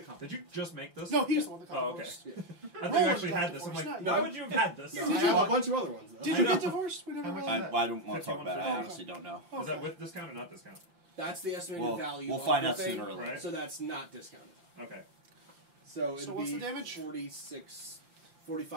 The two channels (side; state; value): left; late; 5.8 ms